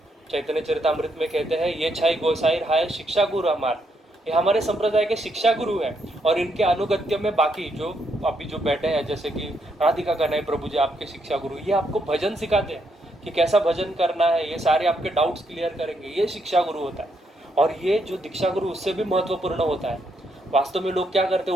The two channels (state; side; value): normal; both; correlation 0.76